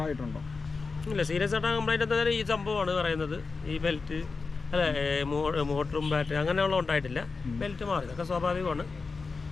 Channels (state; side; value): quieter; right; 4.4 dB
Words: ഇല്ല, സീരിയസ് ആയിട്ട് കംപ്ലൈൻറ്റ് എന്തായാലും ഈ സംഭവമാണ് പറയുന്നത്. ഈ ബെൽറ്റ് മോട്ടറും ബാറ്ററി അങ്ങനെയുള്ള ഉണ്ടായിട്ടില്ല. ബെൽറ്റ് മാറി, ഇതൊക്കെ സ്വാഭാവികമാണ്.